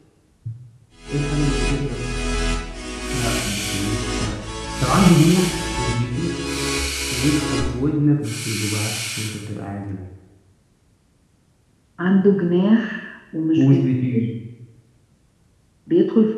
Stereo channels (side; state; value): both; identical; correlation 1.00